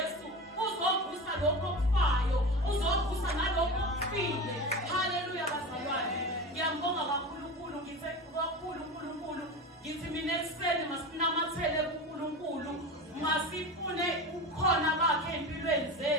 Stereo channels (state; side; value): normal; both; correlation 0.27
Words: uzovusa lokho okufayo, uzovusa nalokho okufile. Haleluya bazalwane. Ngiyambonga kakhulu, ngithe kakhulu uNkulunkulu, ngithi mina ekuseni masinamathele kuNkulunkulu, masifune ukhona bakhe empilweni